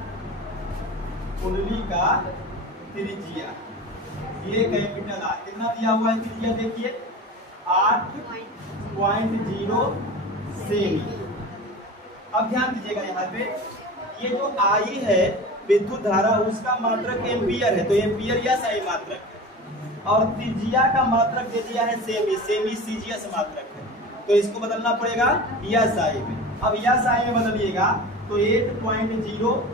कुंडली का त्रिज्या ये कैपिटल R कितना दिया हुआ है त्रिज्या? देखिए 8.0 सेमी। अब ध्यान दीजिएगा, यहाँ पे ये जो I है विद्युत धारा, उसका मात्रक एम्पियर है, तो एम्पियर या सही मात्रक है, और त्रिज्या का मात्रक दे दिया है सेमी, सेमी सीजीएस मात्रक है, तो इसको बदलना पड़ेगा या साई में। अब या साई में बदलिएगा तो 8.0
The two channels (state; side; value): normal; both; correlation 0.33